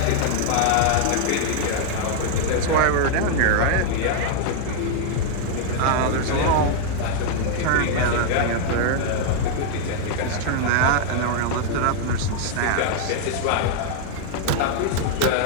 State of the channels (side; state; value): both; different; correlation 0.00